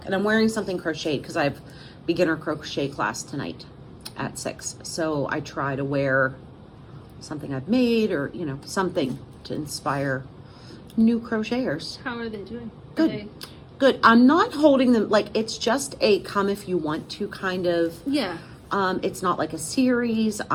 And I'm wearing something crocheted because I have beginner crochet class tonight at 6. So I try to wear something I've made, or, you know, something to inspire new crocheters. How are they doing? Good. Are they... Good. I'm not holding them, like, it's just a come if you want to kind of. Yeah. It's not like a series.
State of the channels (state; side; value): identical; both; correlation 1.00